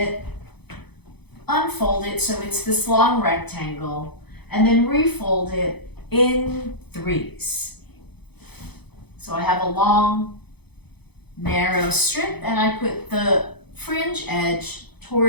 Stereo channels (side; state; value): right; late; 0.98 ms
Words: unfold it so it's this long rectangle, and then refold it in 3s. So I have a long, narrow strip, and I put the fringe edge